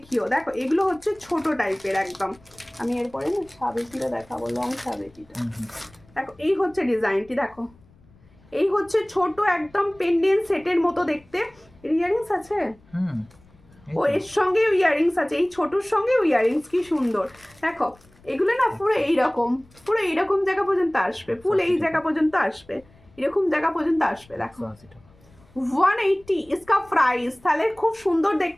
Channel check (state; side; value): noise; left; rumble, 28 dB below the sound